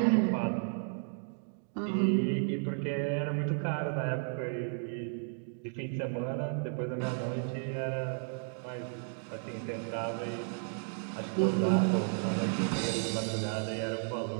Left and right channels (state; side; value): silent; left; 55 dB below the other